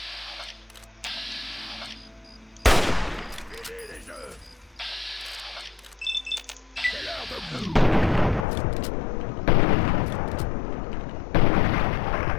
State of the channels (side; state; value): right; drops out; at 8.5 s